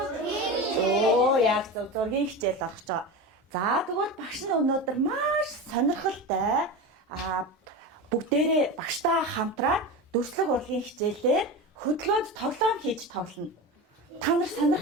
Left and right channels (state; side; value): normal; both; correlation 0.25